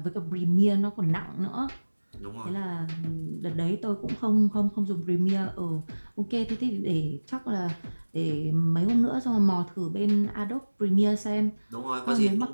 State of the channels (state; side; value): inverted; both; correlation -1.00